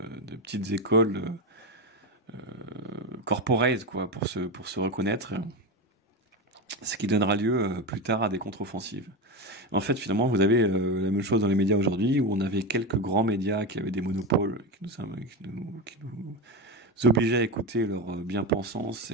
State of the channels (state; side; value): normal; both; correlation 0.17